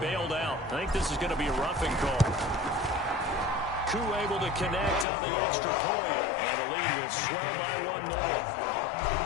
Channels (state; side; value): drops out; right; at 5.1 s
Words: out. I think this is going to be a roughing call. Koo able to connect on the extra point, and the lead will swell by 1 more.